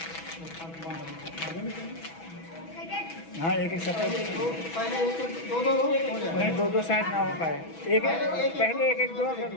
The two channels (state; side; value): late; right; 6.1 ms